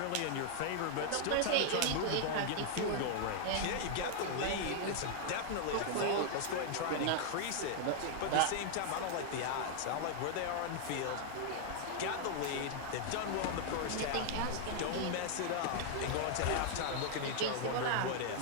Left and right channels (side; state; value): both; different; correlation 0.00